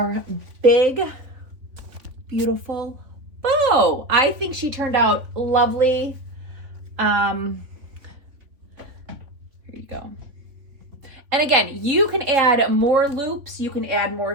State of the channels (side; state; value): left; late; 3.5 ms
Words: big, beautiful bow. I think she turned out lovely. Here you go. And again, you can add more loops, you can add more